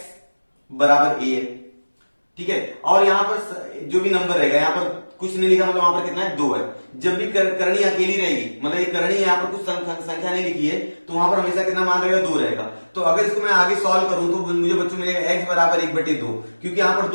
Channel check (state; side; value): inverted; both; correlation -1.00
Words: बराबर a है, ठीक है। और यहां पर जो भी नंबर रहेगा, यहां पर कुछ नहीं लिखा मतलब वहां पर कितना है, 2 है। जब भी करनी अकेली रहेगी, मतलब ये करनी यहाँ पर कुछ संख्या नहीं लिखी है, तो वहां पर हमेशा कितना मान रहेगा, 2 रहेगा। तो अगर इसको मैं आगे सॉल्व करूं तो मुझे बच्चों मिलेगा x बराबर 1/2, क्योंकि यहाँ पर